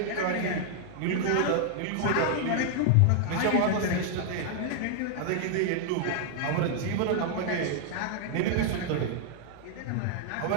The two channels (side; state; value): both; different; correlation 0.00